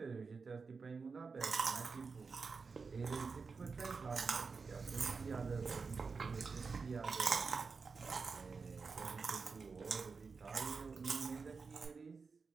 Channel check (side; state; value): left; quieter; 4.8 dB